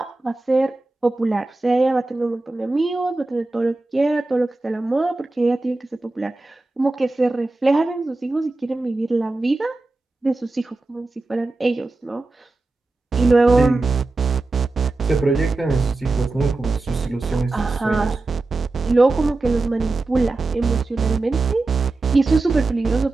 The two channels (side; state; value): left; quieter; 3.3 dB